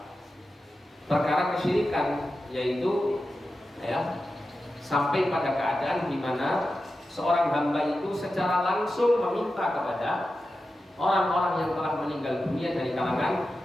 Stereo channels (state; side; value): normal; both; correlation 0.92